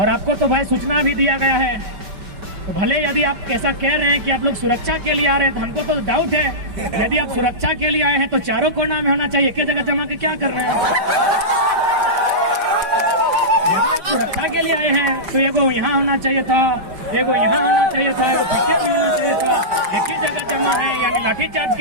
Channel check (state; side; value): late; left; 5.2 ms